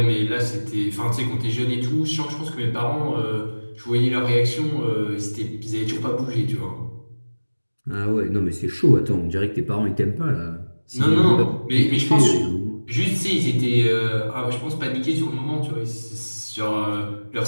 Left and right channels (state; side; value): inverted; both; correlation -1.00